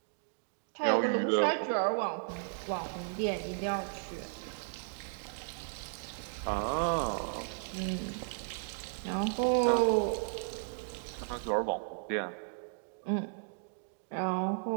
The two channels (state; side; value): silent; left; digital silence